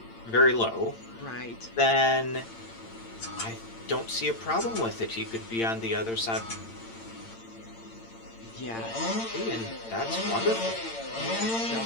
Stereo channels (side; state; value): right; late; 8.8 ms